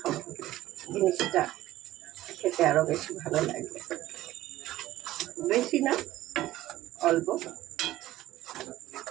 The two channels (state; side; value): quieter; left; 15.3 dB